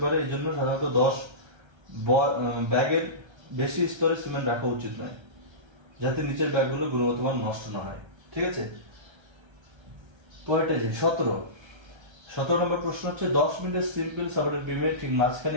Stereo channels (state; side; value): late; left; 1.3 ms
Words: পারে, এই জন্য সাধারণত 10 ব্যাগের বেশি স্তরে সিমেন্ট রাখা উচিত নয়, যাতে নিচের ব্যাগগুলো গুণগত মান নষ্ট না হয়। ঠিক আছে, পরেরটা যে 17 নম্বর প্রশ্ন হচ্ছে 10 মিনিটের সিম্পল সাপোর্টেড বিমে ঠিক